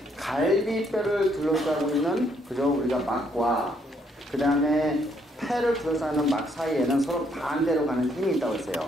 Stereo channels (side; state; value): both; normal; correlation 0.70